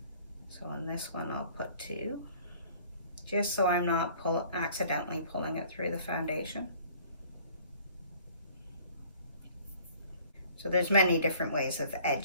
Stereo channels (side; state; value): both; inverted; correlation -0.54